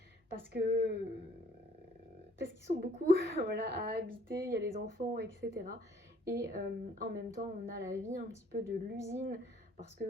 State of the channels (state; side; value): normal; both; correlation 0.60